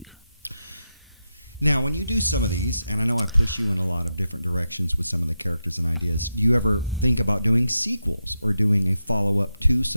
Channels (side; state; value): both; inverted; correlation -0.88